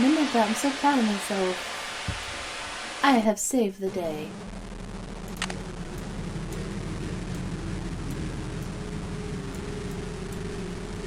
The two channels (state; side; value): identical; both; correlation 1.00